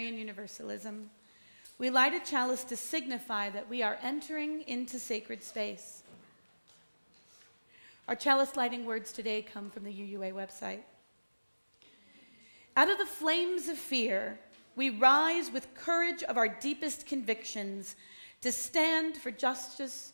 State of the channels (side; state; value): both; inverted; correlation -1.00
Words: Universalism. We light a chalice to signify that we are entering into sacred space. Our chalice lighting words today come from the UUA website. Out of the flames of fear, we rise with courage of our deepest convictions to stand for justice,